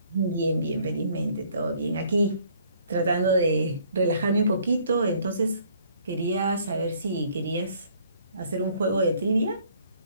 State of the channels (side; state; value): both; inverted; correlation -0.61